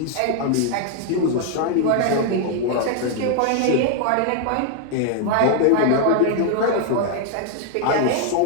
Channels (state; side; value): different; both; correlation 0.00